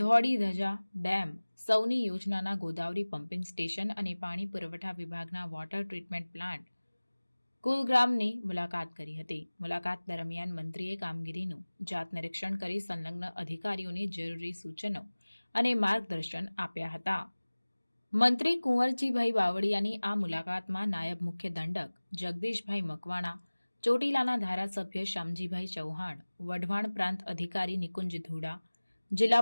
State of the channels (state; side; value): inverted; both; correlation -1.00